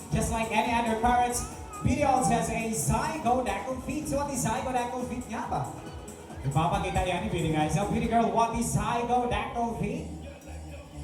just like any other parrots, Beauty also has a zygodactyl feet. So what is zygodactyl feet nga ba? Ipapakita yan ni Beauty guys. So Beauty girl, what is zygodactyl feet?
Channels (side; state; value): both; identical; correlation 1.00